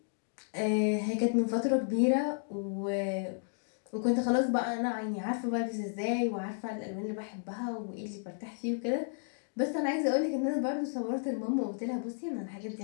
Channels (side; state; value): right; silent; digital silence